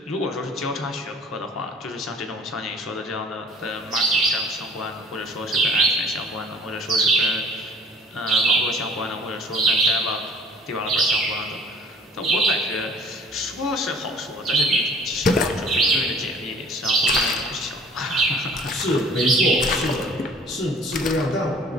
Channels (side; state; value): both; normal; correlation 0.50